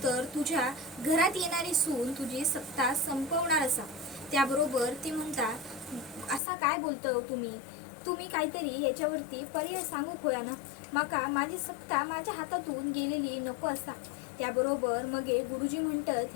तुझ्या घरात येणारी सून तुझी सत्ता संपवणार असा. त्याबरोबर ती म्हणता, असा काय बोलतो तुम्ही काहीतरी याच्यावरती पर्याय सांगू होया ना. माका माझी सत्ता माझ्या हातातून गेलेली नको असा. त्याबरोबर मग गुरुजी म्हणतात,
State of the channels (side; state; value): right; drops out; at 6.4 s